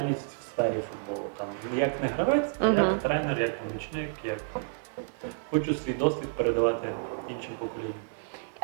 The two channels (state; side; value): silent; left; 58 dB below the other